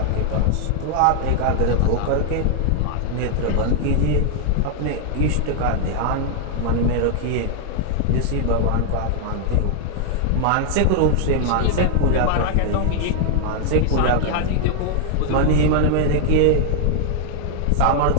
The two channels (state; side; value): different; both; correlation -0.01